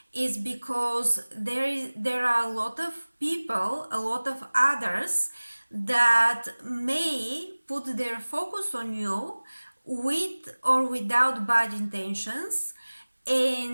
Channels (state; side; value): inverted; both; correlation -1.00